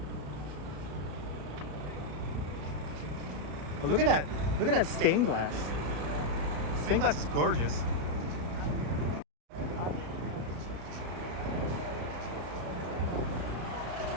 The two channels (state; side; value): late; left; 34 ms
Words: But look at that. Look at that stained glass. Stained glass is gorgeous.